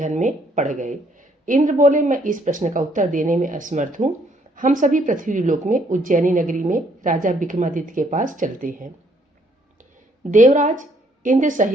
में पड़ गए। इंद्र बोले, मैं इस प्रश्न का उत्तर देने में असमर्थ हूँ। हम सभी पृथ्वी लोक में उज्जैनी नगरी में राजा विक्रमादित्य के पास चलते हैं। देवराज इंद्र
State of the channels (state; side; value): normal; both; correlation 0.67